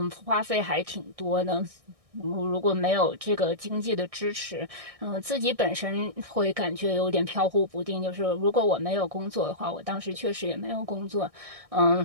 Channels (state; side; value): late; left; 1.6 ms